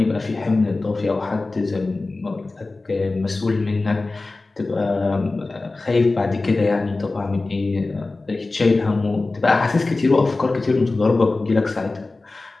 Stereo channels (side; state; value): right; quieter; 3.3 dB